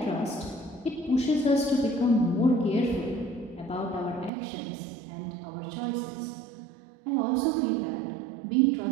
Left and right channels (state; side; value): drops out; left; at 4.3 s